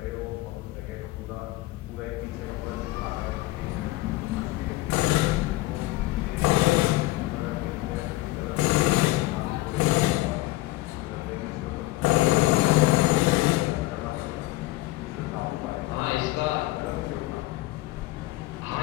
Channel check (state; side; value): quieter; right; 18.8 dB